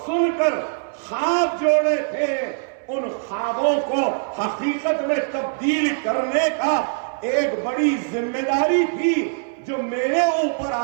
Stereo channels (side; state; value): left; silent; 64 dB below the other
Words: سن کر خواب جوڑے تھے، ان خوابوں کو حقیقت میں تبدیل کرنے کا ایک بڑی ذمہ داری تھی جو میرے اوپر